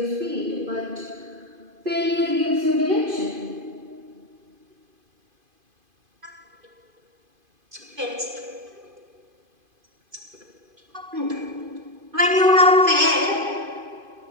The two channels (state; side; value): late; left; 2.5 ms